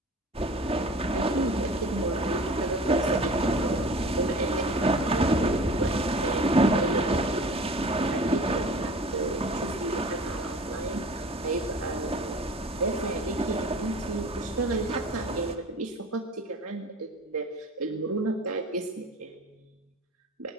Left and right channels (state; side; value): normal; both; correlation 0.42